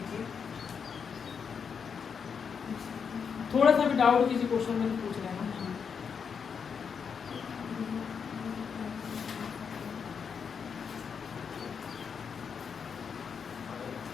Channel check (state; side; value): quieter; right; 6.5 dB